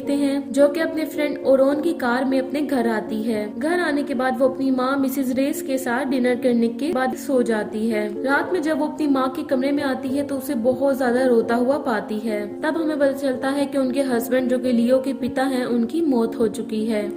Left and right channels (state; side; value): identical; both; correlation 1.00